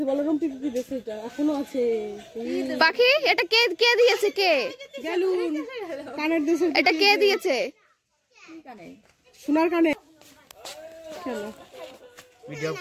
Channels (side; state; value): both; identical; correlation 1.00